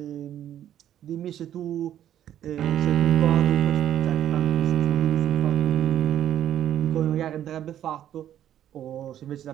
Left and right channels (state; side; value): quieter; left; 11.0 dB